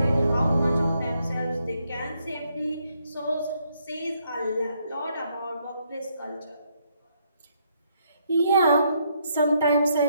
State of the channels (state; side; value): inverted; both; correlation -0.74